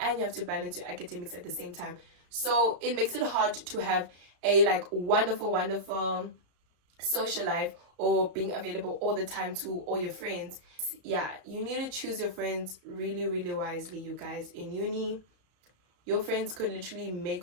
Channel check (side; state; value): left; late; 34 ms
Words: you have to balance your academics at the same time. So it makes it hard to have a wonderful social life or being available all the time to all your friends. Yeah, you need to choose your friends really, really wisely, you guys. In uni, your friends could literally